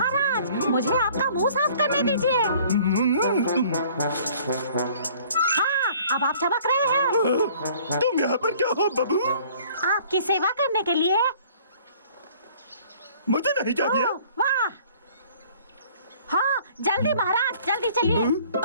मुझे आपका मुंह साफ करने दीजिए। हाँ, अब आप चमक रहे हैं। तुम यहाँ पर क्या हो बबू? आपकी सेवा करने के लिए। मुझे नहीं चाहिए। वाह! हाँ, जल्दी महाराज, जल्दी चलिए।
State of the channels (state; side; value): inverted; both; correlation -0.54